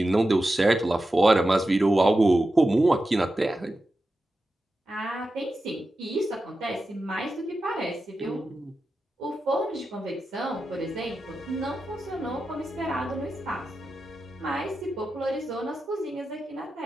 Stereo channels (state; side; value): normal; both; correlation 0.91